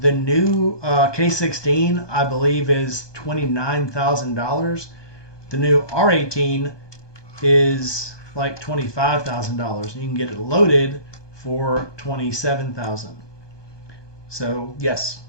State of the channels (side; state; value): right; late; 1.2 ms